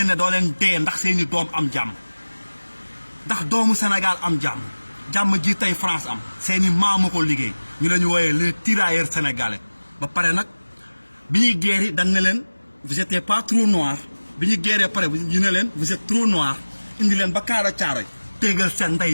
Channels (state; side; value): inverted; both; correlation -1.00